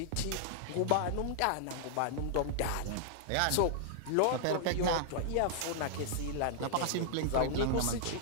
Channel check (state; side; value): different; both; correlation -0.01